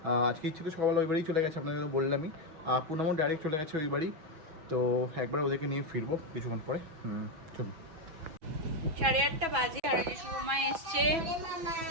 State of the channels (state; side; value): late; left; 6.1 ms